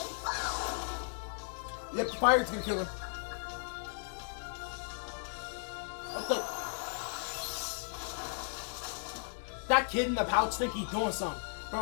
Yep, fire's gonna kill him. That kid in the pouch think he's doing something.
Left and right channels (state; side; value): silent; right; digital silence